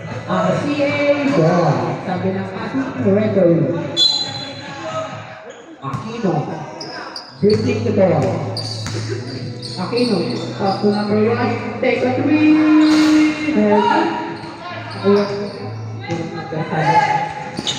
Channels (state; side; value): identical; both; correlation 1.00